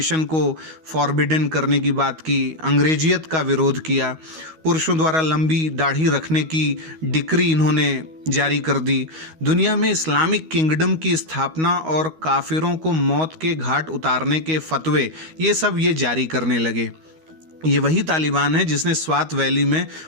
को फॉरबिडन करने की बात की, अंग्रेजियत का विरोध किया, पुरुषों द्वारा लंबी दाढ़ी रखने की डिक्री इन्होंने जारी कर दी, दुनिया में इस्लामिक किंगडम की स्थापना और काफिरों को मौत के घाट उतारने के फतवे, ये सब ये जारी करने लगे। ये वही तालिबान है जिसने स्वात वैली में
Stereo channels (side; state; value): left; late; 13 ms